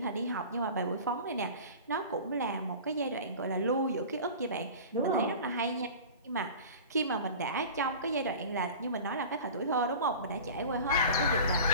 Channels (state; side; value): inverted; both; correlation -0.37